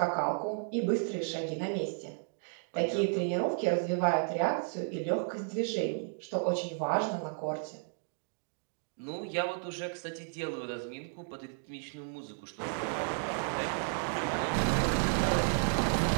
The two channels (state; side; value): silent; left; 56 dB below the other